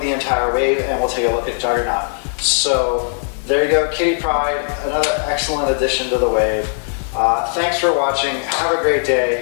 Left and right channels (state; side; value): silent; right; digital silence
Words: entire wave, and we'll take a look at Juggernaut. So there you go, Kitty Pryde, another excellent addition to the wave. Thanks for watching. Have a great